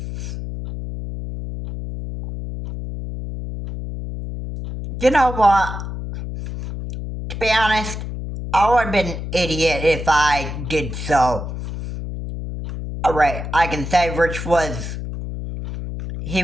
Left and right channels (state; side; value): noise; left; hum, 7 dB below the sound